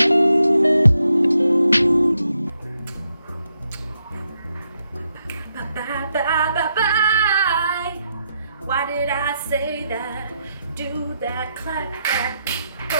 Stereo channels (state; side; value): inverted; both; correlation -0.81